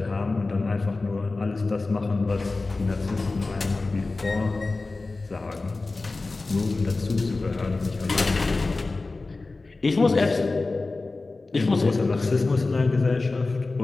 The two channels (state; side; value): quieter; right; 3.5 dB